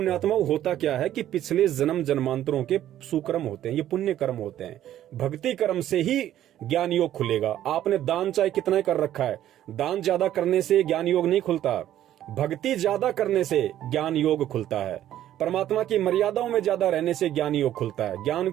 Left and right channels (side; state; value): left; quieter; 12.1 dB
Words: होता क्या है कि पिछले जन्म जन्मांतरों के सुकर्म होते हैं, ये पुण्य कर्म होते हैं। भक्ति कर्म से ही ज्ञान योग खुलेगा। आपने दान चाहे कितना कर रखा है, दान ज्यादा करने से ज्ञान योग नहीं खुलता, भक्ति ज्यादा करने से ज्ञान योग खुलता है। परमात्मा की मर्यादाओं में ज्यादा रहने से ज्ञान योग खुलता है, ज्ञान